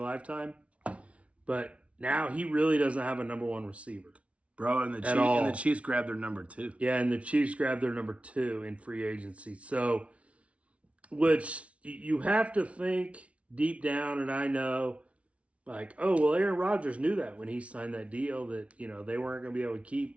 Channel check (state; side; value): late; left; 0.063 ms